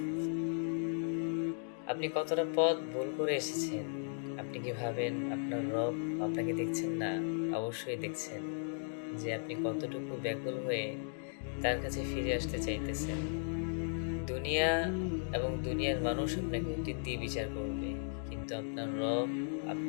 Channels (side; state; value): right; silent; digital silence